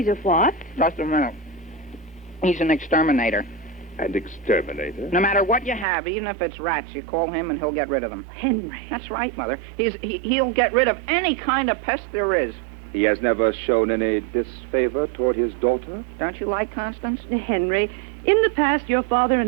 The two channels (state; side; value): drops out; left; at 5.9 s